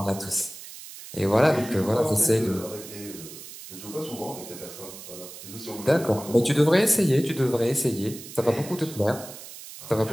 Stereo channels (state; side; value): noise; right; hiss, 14 dB below the sound